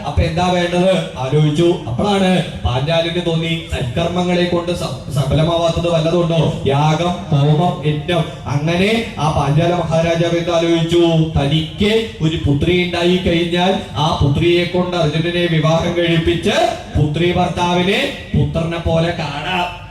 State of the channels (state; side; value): identical; both; correlation 1.00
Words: അപ്പൊ എന്താ വേണ്ടത് ആലോചിച്ചു. അപ്പോഴാണ് പാഞ്ചാലിന് തോന്നി സൽക്കർമ്മങ്ങളെ കൊണ്ട് സഫലമാവാത്തത് വല്ലതുണ്ടോ? യാഗം, ഹോമം, യജ്ഞം. അങ്ങനെ ആ പാഞ്ചാല മഹാരാജാവ് എന്താ ആലോചിച്ചു, തനിക്ക് ഒരു പുത്രി ഉണ്ടായി കഴിഞ്ഞാൽ ആ പുത്രിയെ കൊണ്ട് അർജുനനെ വിവാഹം കഴിപ്പിച്ച് പുത്രി ഭർത്താവിനെ പുത്രനെ പോലെ കാണാം.